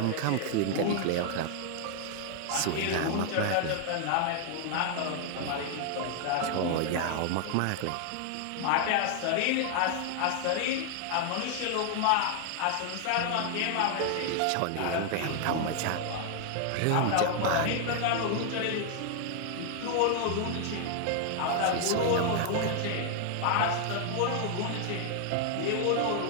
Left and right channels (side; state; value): both; different; correlation 0.00